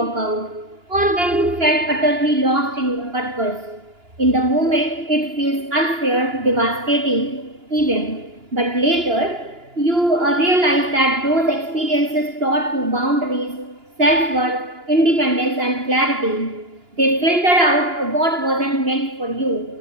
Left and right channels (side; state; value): left; late; 2.9 ms